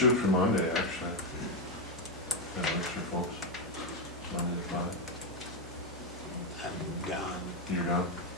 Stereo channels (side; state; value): both; normal; correlation 0.05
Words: for Monday, actually. That works for folks. Monday to Friday. I'm gone, You're gone?